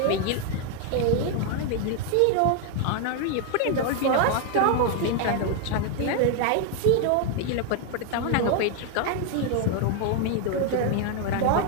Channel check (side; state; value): both; different; correlation 0.00